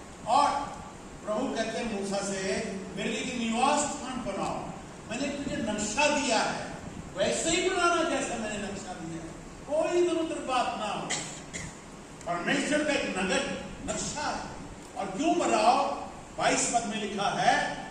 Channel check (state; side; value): identical; both; correlation 1.00